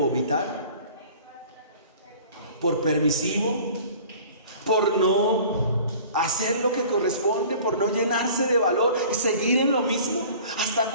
¿Por permisivo? ¿Por no hacer lo que corresponde? ¿Por no llenarse de valor y seguir en lo mismo? ¿Hasta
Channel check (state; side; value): inverted; both; correlation -0.46